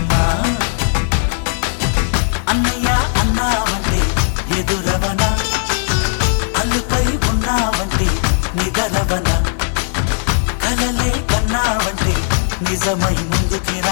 అన్నయ్య అన్నావంటే ఎదురవన అల్లుపై ఉన్నావంటే నిదరవన కలలే కన్నావంటే నిజమై ముందుకి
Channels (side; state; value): right; silent; digital silence